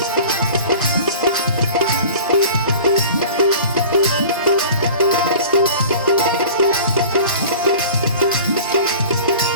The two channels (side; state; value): both; inverted; correlation -0.42